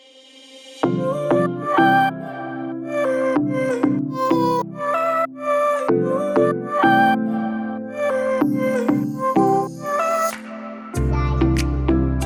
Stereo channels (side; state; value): both; identical; correlation 1.00